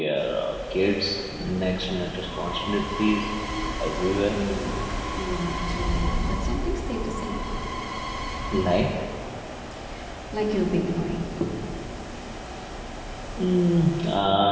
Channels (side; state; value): both; identical; correlation 1.00